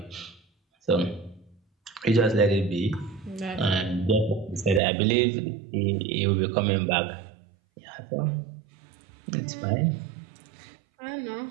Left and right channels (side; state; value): left; drops out; at 4.8 s